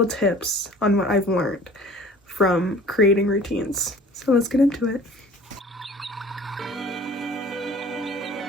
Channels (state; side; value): normal; both; correlation 0.47